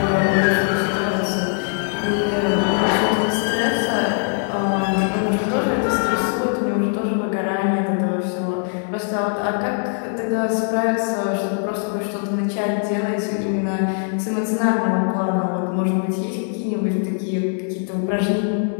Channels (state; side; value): silent; right; 58 dB below the other